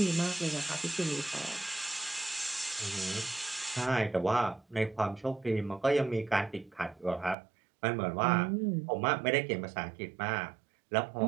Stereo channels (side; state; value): left; drops out; at 7.4 s